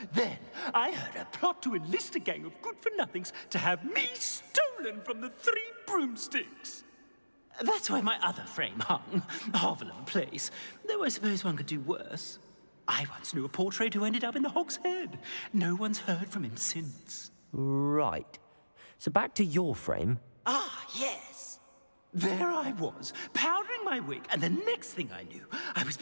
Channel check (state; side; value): inverted; both; correlation -1.00